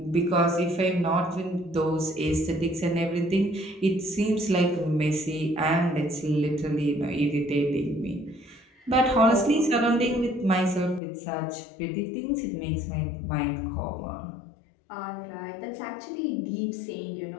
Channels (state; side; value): drops out; right; at 11.0 s